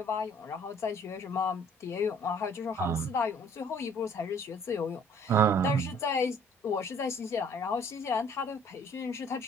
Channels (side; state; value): both; normal; correlation 0.57